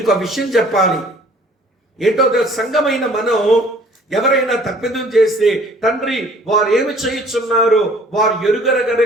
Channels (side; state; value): both; normal; correlation 0.53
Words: ఆ విషయం చెప్పాలి ఏంటో, సంఘమైన మనం ఎవరైనా తప్పిదం చేస్తే, తండ్రి వారు ఏమి చేయుచున్నారు, వారు ఎరుగరగర